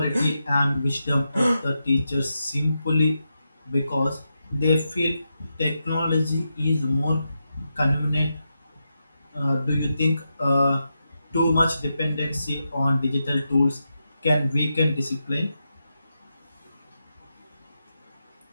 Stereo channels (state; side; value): inverted; both; correlation -0.87